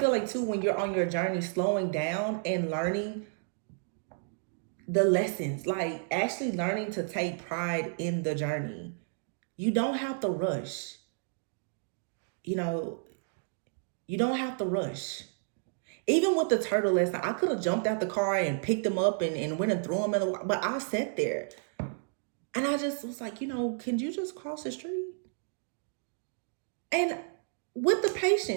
like too, when you're on your journey, slowing down and learning the lessons, like actually learning to take pride in the journey. You don't have to rush. You know, you don't have to rush. Even with the turtle last night, I could have jumped out the car and picked him up and went and threw him in the water. But I sat there and I just was like, can you just cross the street? And with the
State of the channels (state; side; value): silent; left; digital silence